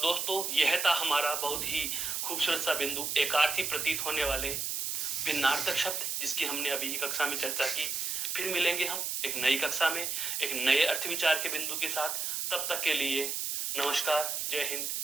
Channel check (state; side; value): noise; right; hiss, 1 dB below the sound